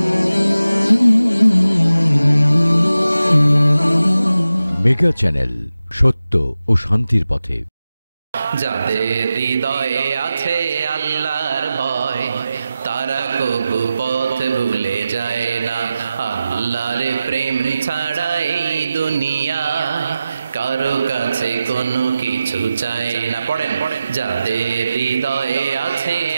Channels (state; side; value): inverted; both; correlation -0.93